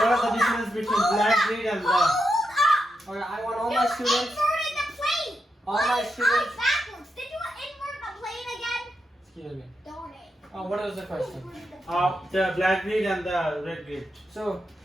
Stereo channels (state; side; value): normal; both; correlation 0.85